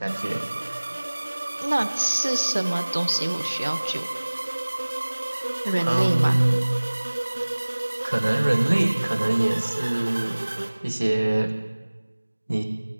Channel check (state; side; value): inverted; both; correlation -1.00